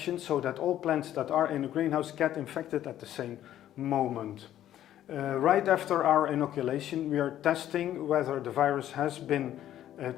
so that all plants that are in the greenhouse get infected at the same moment. Right after our inoculation, we are testing whether the virus has been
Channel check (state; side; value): quieter; right; 12.1 dB